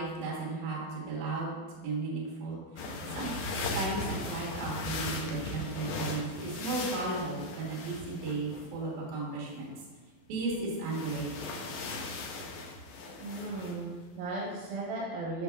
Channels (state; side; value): late; left; 12 ms